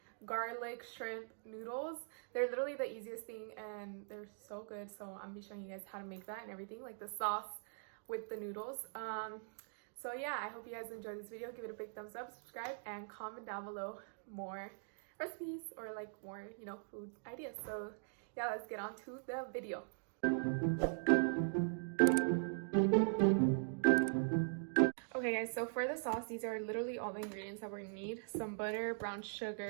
garlic shrimp noodles. They're literally the easiest thing and they're so good. So I'm going to be showing you guys how to make that and everything, like the sauce with the noodles. So yeah, I hope you guys enjoyed this video. Give it a big thumbs up, subscribe, and comment down below more recipes or like more, food ideas. So yeah, let's get on to the video. Okay guys, so for the sauce, these are literally all the ingredients that we're gonna need. Some butter, brown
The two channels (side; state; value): left; silent; digital silence